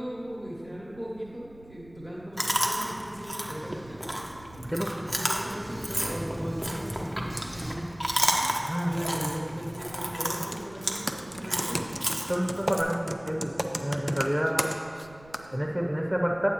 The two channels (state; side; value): noise; right; rumble, 22 dB below the sound